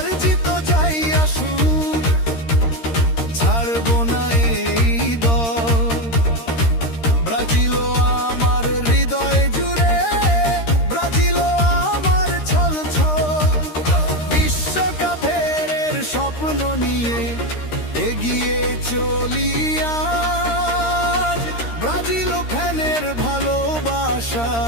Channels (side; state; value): right; late; 13 ms